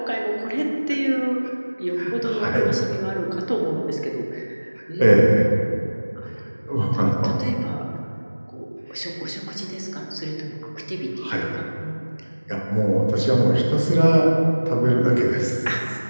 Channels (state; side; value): inverted; both; correlation -1.00